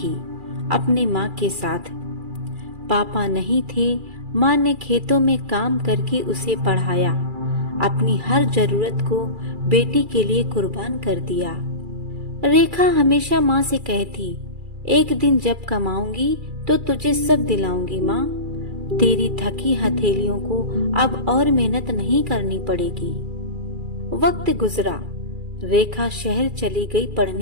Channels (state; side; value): late; left; 2.4 ms